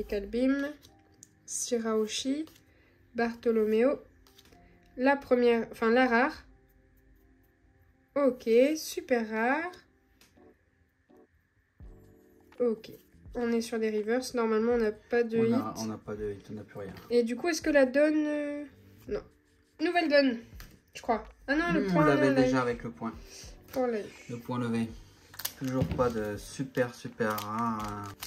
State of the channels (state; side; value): identical; both; correlation 1.00